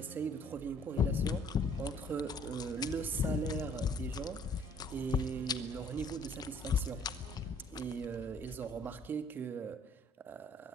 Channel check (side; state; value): both; normal; correlation 0.59